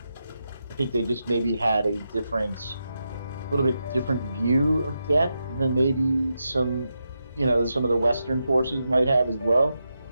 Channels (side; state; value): both; inverted; correlation -0.87